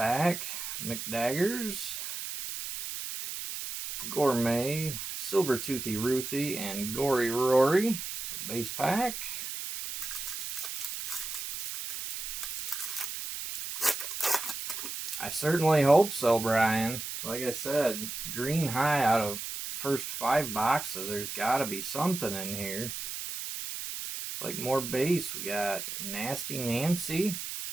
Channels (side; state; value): right; noise; hiss, 6 dB below the sound